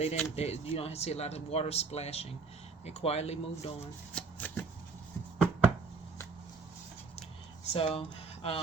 don't see a lot of water splashing. They quietly moved on. So,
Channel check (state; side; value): quieter; left; 4.4 dB